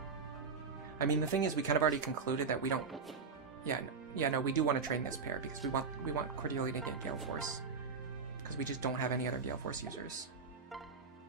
I mean, the thing is, we kind of already concluded that we don't... Yeah, no, we do want to train this pair, because we want Cordelia to get Gale Force. Because we just don't have any other Gale Force users.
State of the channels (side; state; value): left; quieter; 5.2 dB